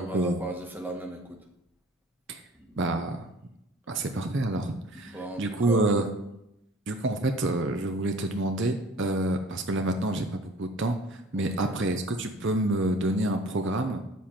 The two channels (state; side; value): normal; both; correlation 0.49